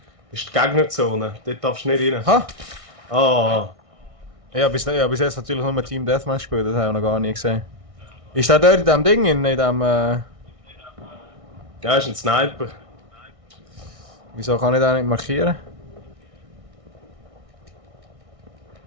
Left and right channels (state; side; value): late; left; 1.6 ms